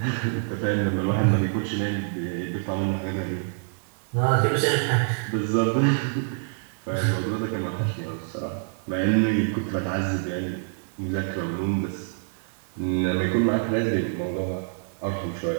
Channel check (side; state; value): left; silent; 61 dB below the other